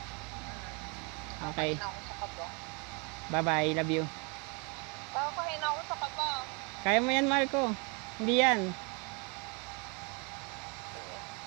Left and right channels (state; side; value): quieter; left; 32.7 dB